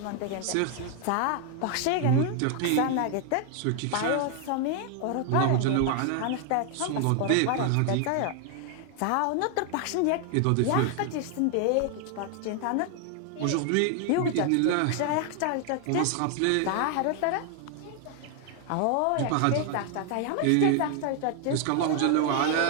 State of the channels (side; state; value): both; different; correlation 0.00